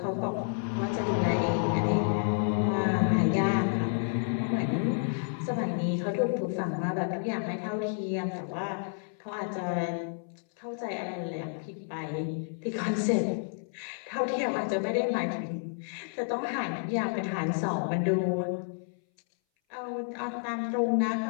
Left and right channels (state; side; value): silent; right; 58 dB below the other